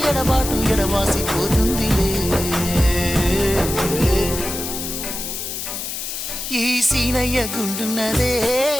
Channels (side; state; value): left; noise; hiss, 5 dB below the sound